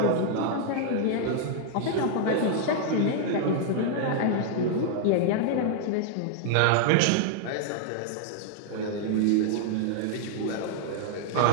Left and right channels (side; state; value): both; different; correlation -0.01